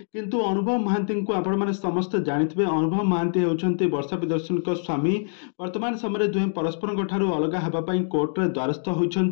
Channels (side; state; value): right; silent; digital silence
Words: କିନ୍ତୁ ଅନୁଭବ ମହାନ୍ତିଙ୍କୁ ଆପଣମାନେ ସମସ୍ତେ ଜାଣିଥିବେ ଅନୁଭବ ମହାନ୍ତି ହେଉଛନ୍ତି ବର୍ଷା ପ୍ରିୟଦର୍ଶିନୀଙ୍କ ସ୍ୱାମୀ। ବର୍ତ୍ତମାନ ସମୟରେ ଦୁହେଁ ପରସ୍ପରଙ୍କ ଠାରୁ ଅଲଗା ହେବା ପାଇଁ କୋର୍ଟରେ ଦ୍ୱାରସ୍ଥ